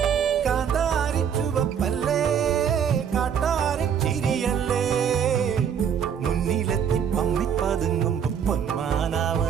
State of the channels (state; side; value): quieter; left; 7.9 dB